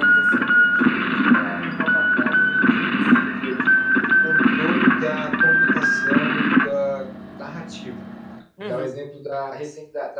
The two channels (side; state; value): both; identical; correlation 1.00